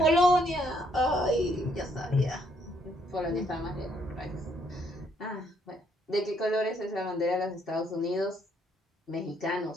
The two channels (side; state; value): both; normal; correlation 0.70